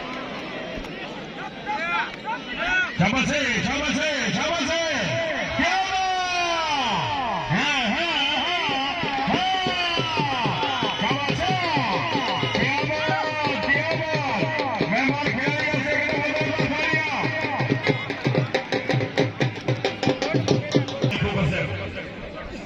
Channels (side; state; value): both; identical; correlation 1.00